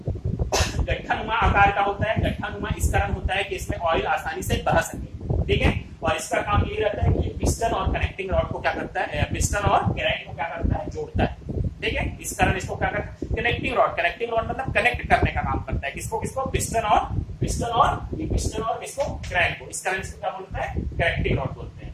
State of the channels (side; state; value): both; identical; correlation 1.00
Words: गट्ठानुमा आकार का होता है। गट्ठानुमा इस कारण होता है कि इसमें ऑयल आसानी से बह सके। ठीक है, और इसका काम ये रहता है कि पिस्टन और कनेक्टिंग रॉड को क्या करता है, पिस्टन और क्रैंक को क्या करता है, जोड़ता है। ठीक है, इस कारण इसको क्या करता है, कनेक्टिंग रॉड। कनेक्टिंग रॉड मतलब कनेक्ट करने का काम करता है। किसको किसको, पिस्टन और किसको, क्रैंक को। इस कारण इसको क्या बोलता है, कनेक्टिंग रॉड बोलते हैं।